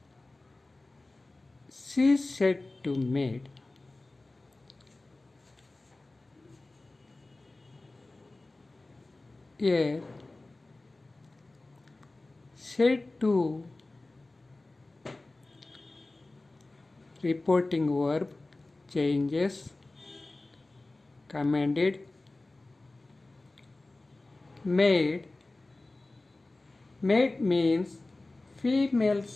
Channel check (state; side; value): quieter; right; 3.0 dB